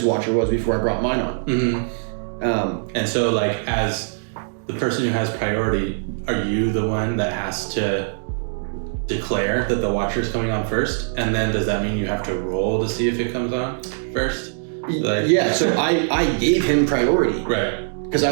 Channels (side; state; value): left; silent; digital silence